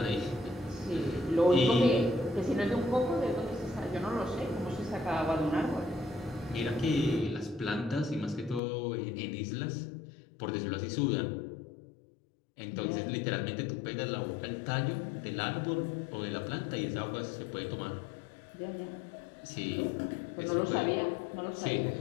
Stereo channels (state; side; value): drops out; right; at 8.6 s